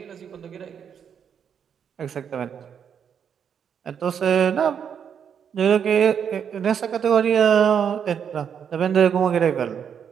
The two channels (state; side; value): quieter; left; 7.8 dB